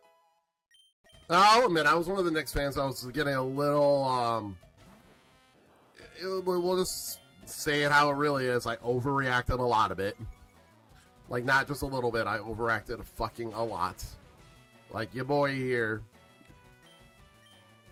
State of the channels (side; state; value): both; identical; correlation 1.00